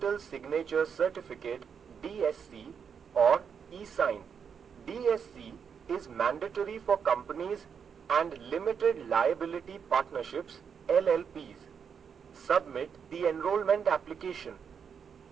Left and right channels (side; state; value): left; quieter; 6.9 dB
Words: signature certificate DSC or e-sign. DSC is mandatory for companies and limited liability partnerships LLPs. Submit the enrollment application.